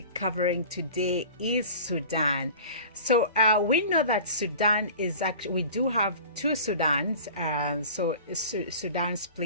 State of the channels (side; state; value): both; inverted; correlation -0.40